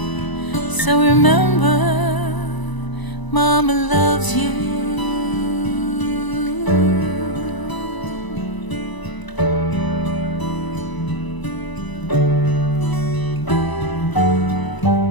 So remember, Mama loves you.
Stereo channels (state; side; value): late; right; 1.0 ms